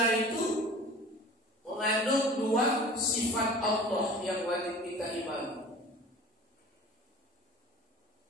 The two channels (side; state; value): both; normal; correlation 0.42